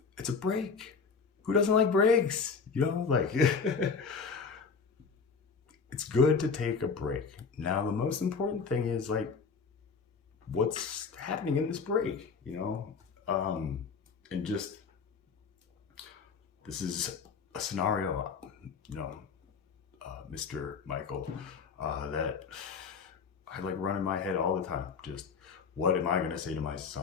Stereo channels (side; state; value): right; quieter; 5.4 dB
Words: it's a break. Who doesn't like breaks? Like, it's good to take a break. Now, the most important thing is, like, what's happening in this break, and just, this is a scenario, Mr. Michael, that I like run in my head all the time. Just, what am I going to say to my